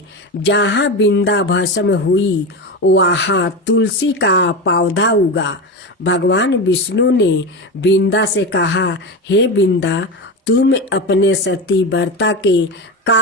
जहाँ बिंदा भस्म हुई वहाँ तुलसी का पौधा उगा। भगवान विष्णु ने बिंदा से कहा, हे बिंदा, तुम अपने सती व्रता के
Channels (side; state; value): both; normal; correlation 0.20